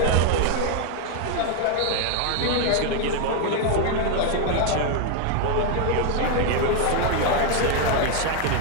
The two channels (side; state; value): both; different; correlation 0.00